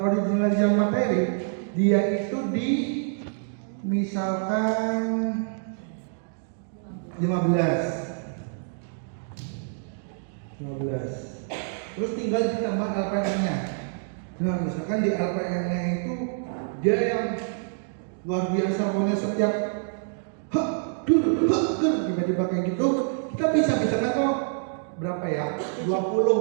materi dia itu di misalkan 15. Terus tinggal ditambah LPM-nya. Nah, misalkan di LPM-nya itu dia yang luar biasa, pokoknya setiap tiba-tiba kayak gitu, kita bisa misalkan kok berapa ya?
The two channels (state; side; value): silent; left; digital silence